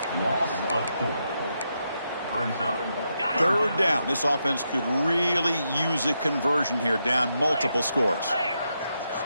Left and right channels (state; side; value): inverted; both; correlation -0.83